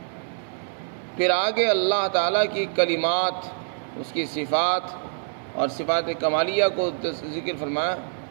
پھر آگے اللہ تعالیٰ کی کلمات، اس کی صفات اور صفات کمالیہ کو ذکر فرمایا۔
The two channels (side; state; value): left; silent; 62 dB below the other